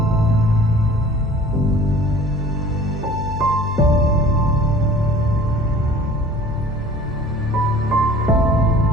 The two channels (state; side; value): normal; both; correlation 0.48